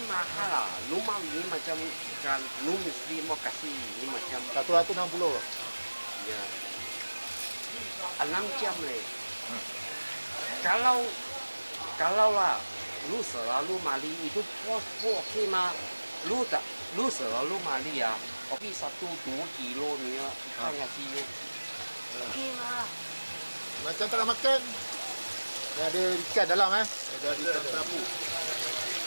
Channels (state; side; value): inverted; both; correlation -1.00